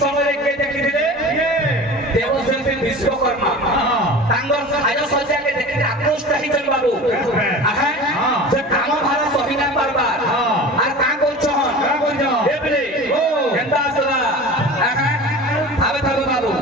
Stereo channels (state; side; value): normal; both; correlation 0.36